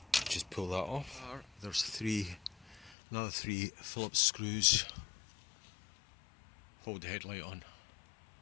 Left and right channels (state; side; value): drops out; right; at 3.0 s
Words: Just pull that off. There's another 3 Phillips screws. Hold the headlight on.